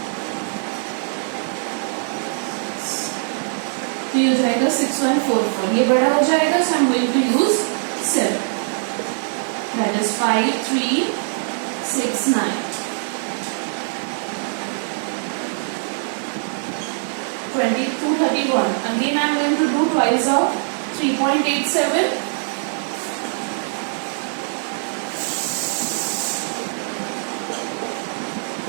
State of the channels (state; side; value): silent; left; digital silence